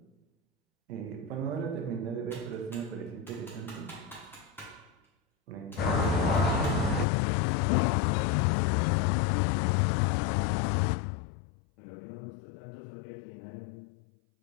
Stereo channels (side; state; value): right; drops out; at 7.1 s